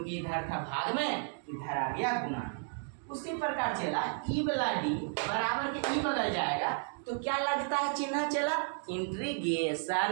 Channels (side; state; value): left; silent; 56 dB below the other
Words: इधर था भाग में, इधर आ गया गुना में। उसी प्रकार चला ई वाला d बराबर के ई बगल जाएगा तो क्या लगता है चिन्ह चला